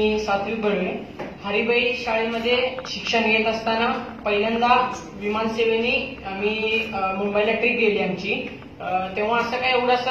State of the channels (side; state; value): both; identical; correlation 1.00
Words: सात्विक बर्वे. हरिबाई शाळेमध्ये शिक्षण घेत असताना पहिल्यांदा विमानसेवेने आम्ही मुंबईला ट्रिप गेली आमची. तेव्हा असं काय एवढं